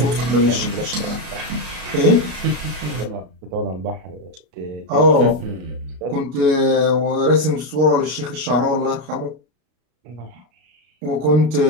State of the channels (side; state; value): left; late; 33 ms